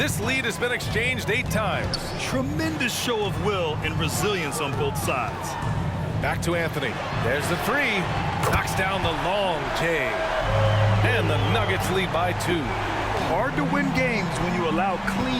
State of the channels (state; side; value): identical; both; correlation 1.00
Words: lead has been exchanged 8 times. Tremendous show of will and resilience on both sides. Back to Anthony. There's the 3. Knocks down the long J. And the Nuggets lead by 2. Hard to win games when you allow